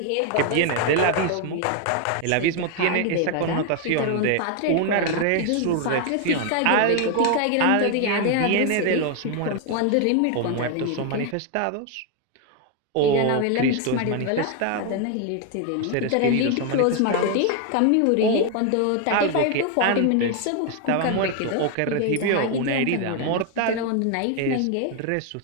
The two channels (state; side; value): different; both; correlation 0.01